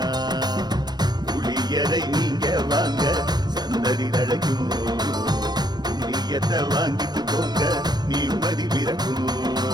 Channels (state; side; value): late; left; 0.20 ms